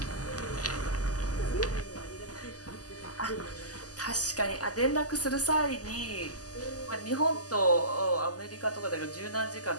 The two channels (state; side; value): late; right; 0.67 ms